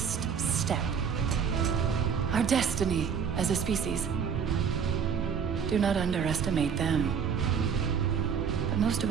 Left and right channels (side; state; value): left; quieter; 7.0 dB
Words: step. Our destiny as a species. Do not underestimate them. But most